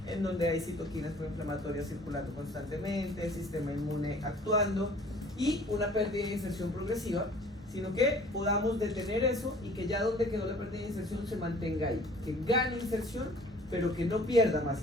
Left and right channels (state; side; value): normal; both; correlation 0.51